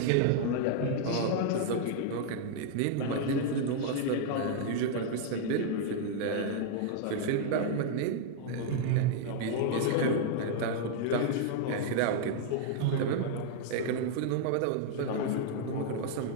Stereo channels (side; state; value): both; different; correlation 0.00